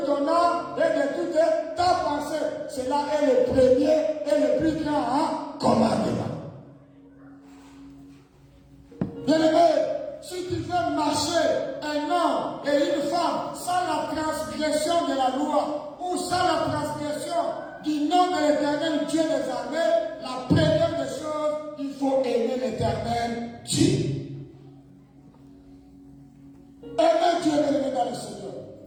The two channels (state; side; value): identical; both; correlation 1.00